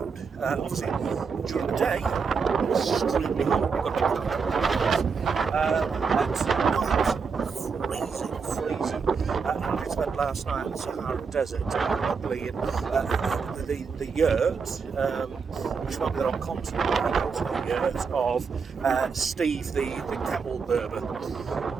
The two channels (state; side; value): quieter; left; 5.5 dB